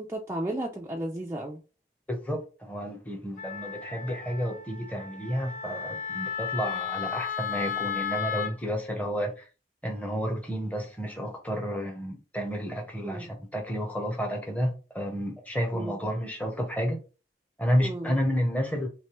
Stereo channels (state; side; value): normal; both; correlation 0.66